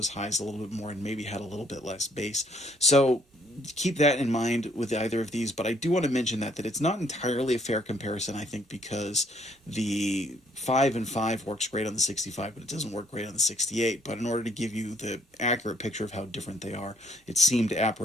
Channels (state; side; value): normal; both; correlation 0.65